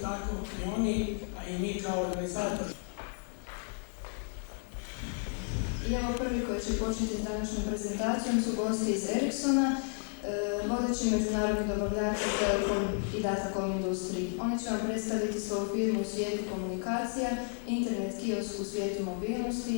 tako i oni, a i mi kao organizator. I evo prvi koji će početi s današnjom prezentacijom su gosti iz Ericssona, vodeći međunarodni dobavljač u telekom i datacom industriji. Oni će vam predstaviti svoju firmu u svijetu komunikacija, internet kiosk u svijetu mobilnosti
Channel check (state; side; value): silent; right; 56 dB below the other